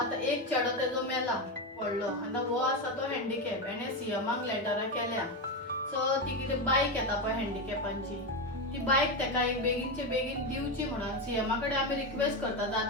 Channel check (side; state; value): both; normal; correlation 0.12